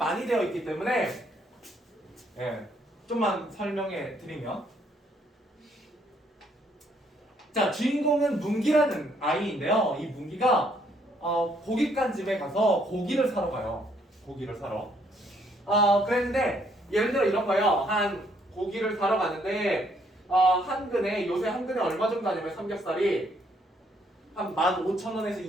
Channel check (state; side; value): normal; both; correlation 0.69